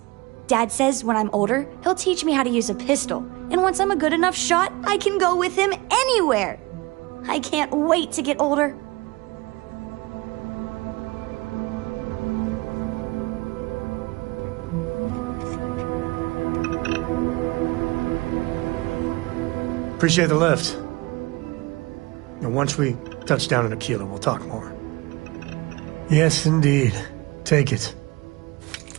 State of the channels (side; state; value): left; quieter; 23.3 dB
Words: Dad says when I'm older, he'll teach me how to use a pistol, and once I'm a good enough shot, I can go with him anywhere. I can't wait to get older. Appreciate the lift. Now, once we touch down in Aquila, we'll talk more. Yes, indeed. Take it.